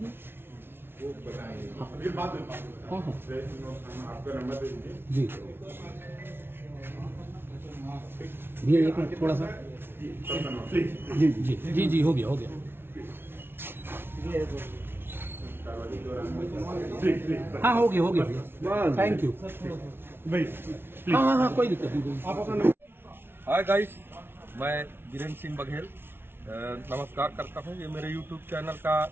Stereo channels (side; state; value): left; late; 0.11 ms